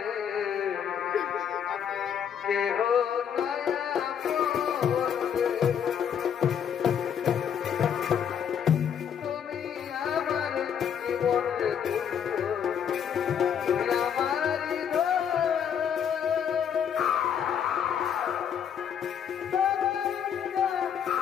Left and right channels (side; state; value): right; quieter; 8.3 dB